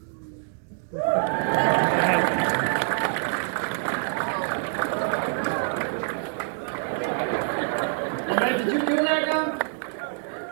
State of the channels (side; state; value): left; silent; digital silence